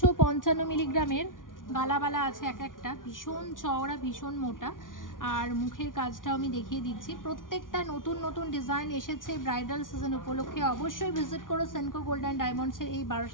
মিলিগ্রামের গালাবালা আছে এক একটা, ভীষণ চওড়া ভীষণ মোটা, আর মুখের কাজটাও আমি দেখিয়ে দিচ্ছি। প্রত্যেকটা নতুন নতুন ডিজাইন এসেছে ব্রাইডাল সিজন উপলক্ষে। অবশ্যই ভিজিট করো সেনকো গোল্ড অ্যান্ড ডায়মন্ডসের এই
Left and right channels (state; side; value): late; right; 0.89 ms